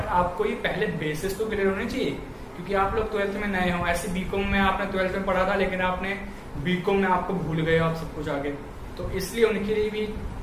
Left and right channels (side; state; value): both; identical; correlation 1.00